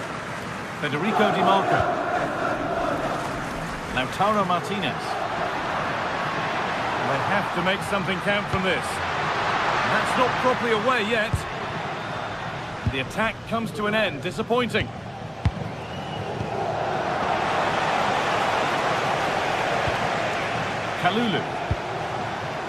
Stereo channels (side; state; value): both; identical; correlation 1.00